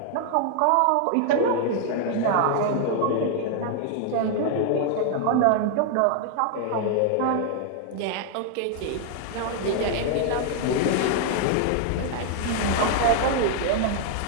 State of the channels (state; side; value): different; both; correlation 0.00